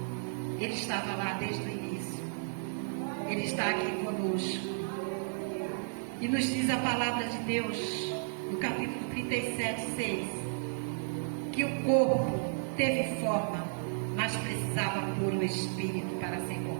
Ele estava lá desde o início, Ele está aqui conosco, e nos diz a palavra de Deus no capítulo 37:6 que o corpo teve forma, mas precisava pôr o Espírito para ser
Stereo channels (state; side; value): silent; left; digital silence